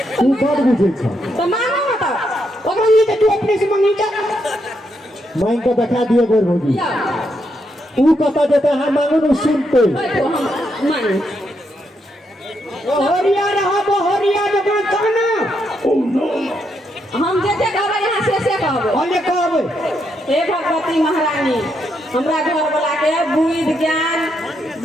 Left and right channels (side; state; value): both; normal; correlation 0.79